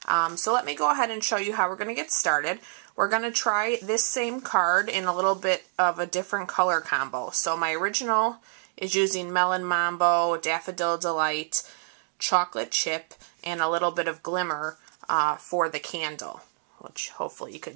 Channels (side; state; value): left; silent; 60 dB below the other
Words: So let me go ahead and show you how we're going to get started. We're going to try this same card in a little bit of a different color combo. So my original is using Melon Mambo, Daffodil Delight, Chocolate Chip, and a little bit of glimmer for the candle, which hopefully you